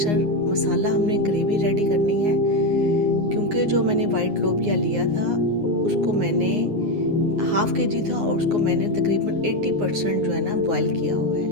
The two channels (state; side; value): late; left; 9.7 ms